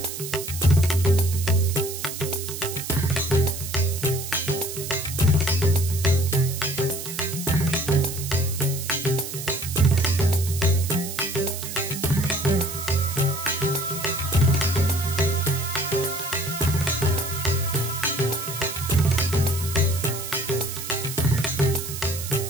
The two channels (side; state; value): right; noise; hiss, 8 dB below the sound